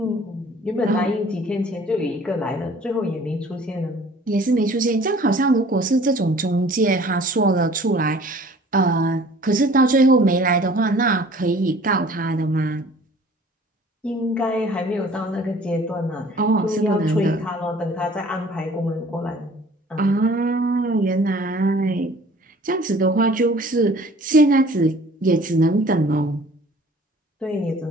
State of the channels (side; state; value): both; normal; correlation 0.51